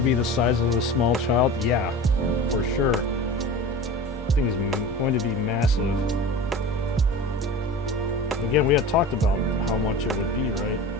be the size of a small child? Yeah, for sure. Thing's going to be massive. Again, we had talked about how much it would be, right?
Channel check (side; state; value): both; normal; correlation 0.34